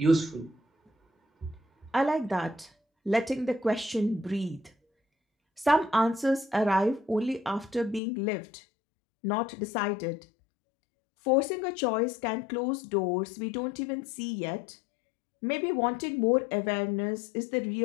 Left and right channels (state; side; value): drops out; right; at 8.0 s